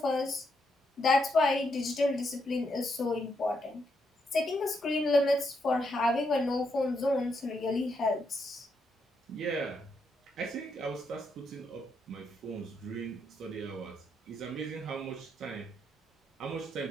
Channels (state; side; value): normal; both; correlation 0.79